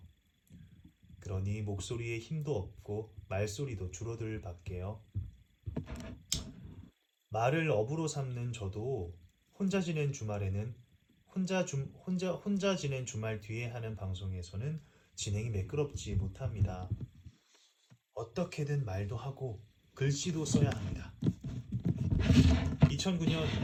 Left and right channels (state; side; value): identical; both; correlation 1.00